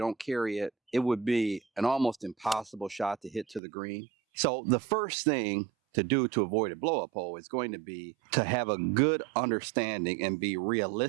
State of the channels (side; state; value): left; drops out; at 3.6 s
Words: carry it, it would be an almost impossible shot to hit to the green. So the first thing to do to avoid a blow-up hole is going to be to have a good understanding and be